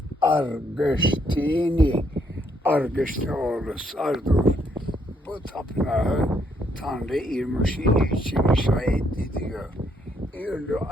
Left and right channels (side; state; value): both; normal; correlation 0.72